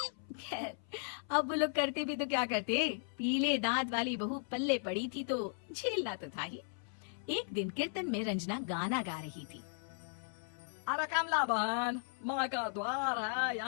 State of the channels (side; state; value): right; silent; 53 dB below the other